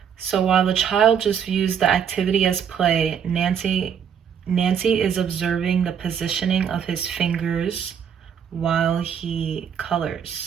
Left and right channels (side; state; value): left; quieter; 7.9 dB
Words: So while the child just views the activity as play, Nancy is observing the positioning of his fingers while he